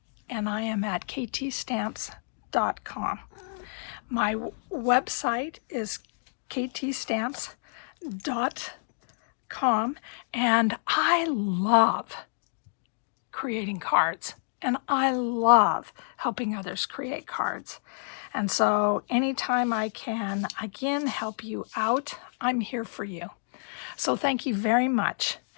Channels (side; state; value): right; silent; digital silence